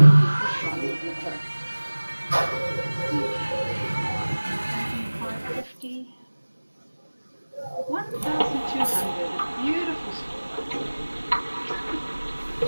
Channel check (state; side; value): inverted; both; correlation -1.00